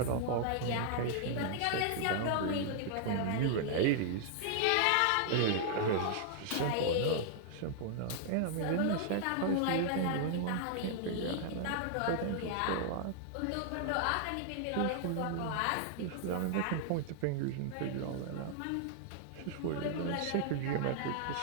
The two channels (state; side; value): different; both; correlation 0.00